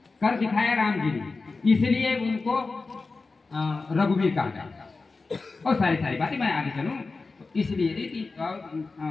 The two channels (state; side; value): quieter; right; 3.9 dB